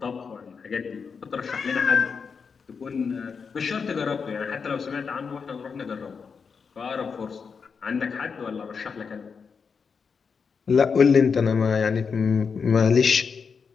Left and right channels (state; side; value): quieter; right; 5.7 dB